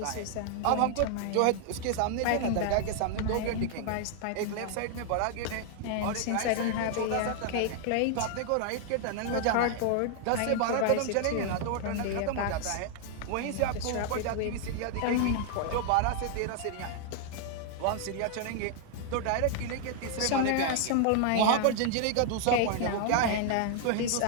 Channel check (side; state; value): both; different; correlation 0.00